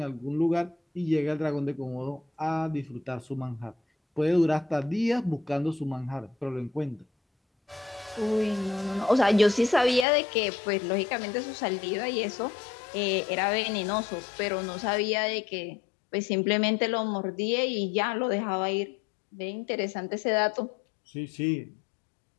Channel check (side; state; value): right; drops out; at 10.1 s